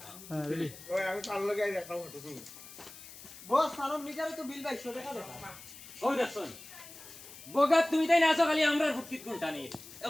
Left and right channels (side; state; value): left; noise; hiss, 16 dB below the sound